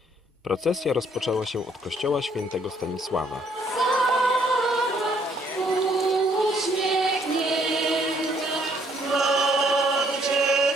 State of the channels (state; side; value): normal; both; correlation 0.66